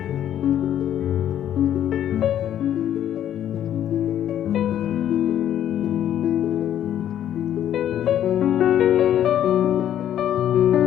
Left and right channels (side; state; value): right; quieter; 10.8 dB